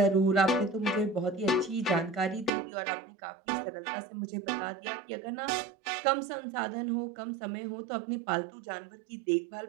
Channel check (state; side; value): drops out; left; at 2.5 s